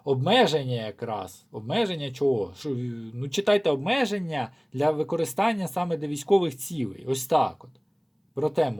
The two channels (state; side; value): identical; both; correlation 1.00